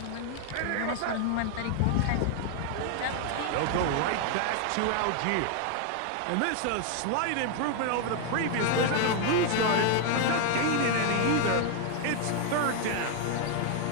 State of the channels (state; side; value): different; both; correlation 0.00